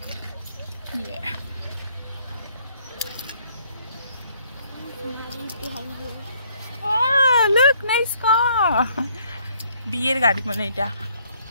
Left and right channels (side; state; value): both; inverted; correlation -0.66